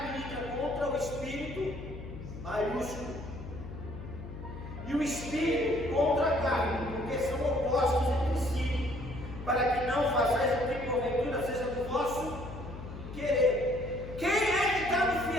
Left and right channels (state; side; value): noise; left; hum, 11 dB below the sound